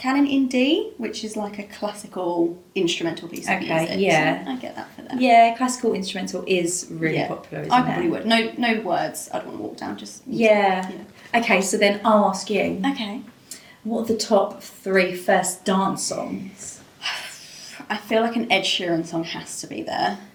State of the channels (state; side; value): identical; both; correlation 1.00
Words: in D, which is like a classical instrumental piece of Okay, music. yeah. So I get that for them. Yeah, classical instrumental is really Yeah. popular, isn't I it? probably would. No words. I'd want to walk down. Just Yeah. Okay, so then I'll ask you. Okay. What are the top 3 first dance songs? I feel like an Ed Sheeran song has to be there.